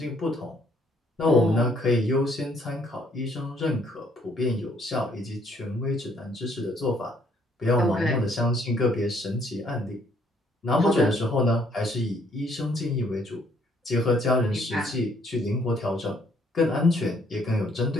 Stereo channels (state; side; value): normal; both; correlation 0.66